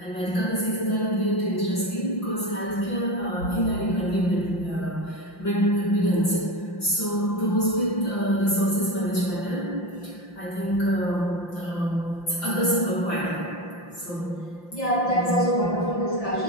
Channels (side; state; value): right; late; 5.8 ms